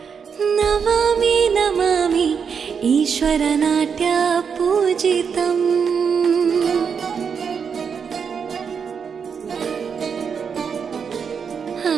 ನಮಾಮಿ ನಮಾಮಿ ಈಶ್ವರ ನಾಟ್ಯ ಪೂಜಿತಂ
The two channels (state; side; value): quieter; left; 6.5 dB